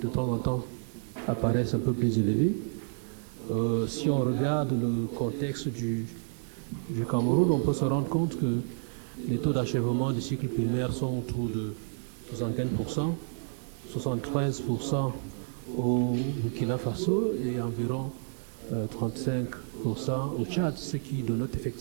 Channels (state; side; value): silent; left; digital silence